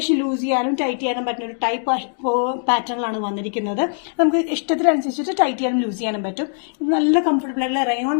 ലൂസ് ചെയ്യാനും ടൈറ്റ് ചെയ്യാനും പറ്റുന്ന ഒരു ടൈപ്പ് പാറ്റേണിലാണ് വന്നിരിക്കുന്നത്. നമുക്ക് ഇഷ്ടത്തിനനുസരിച്ചിട്ട് ടൈറ്റ് ചെയ്യാനും ലൂസ് ചെയ്യാനും പറ്റും. ഇത് നല്ല കംഫർട്ടബിൾ ആയിട്ടുള്ള റയോൺ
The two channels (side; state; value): right; silent; 65 dB below the other